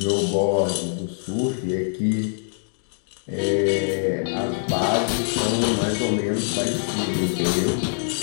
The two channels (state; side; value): silent; right; digital silence